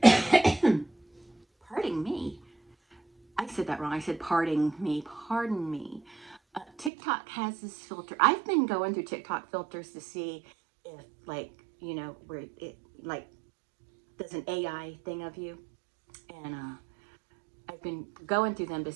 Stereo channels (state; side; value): drops out; left; at 6.9 s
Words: Pardon me. I said that wrong. I said pardon me. Pardon me. TikTok has this filter. I've been going through TikTok filters to see if, like, you know, where it like does an AI thing of you. And I've been going through them to